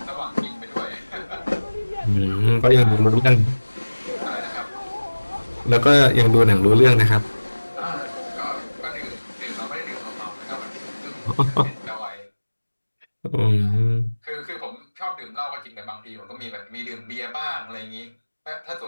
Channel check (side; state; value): both; inverted; correlation -1.00